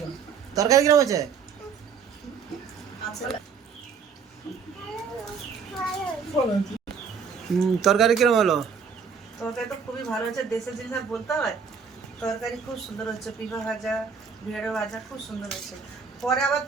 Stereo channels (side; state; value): left; quieter; 6.2 dB